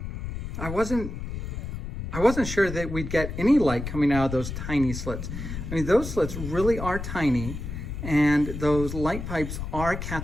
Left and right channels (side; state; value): left; noise; rumble, 7 dB below the sound